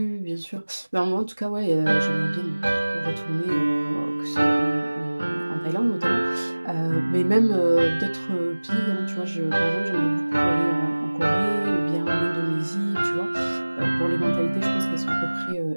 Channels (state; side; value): inverted; both; correlation -1.00